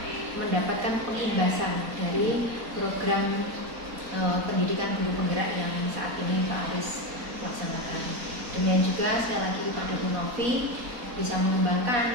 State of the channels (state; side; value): late; left; 4.1 ms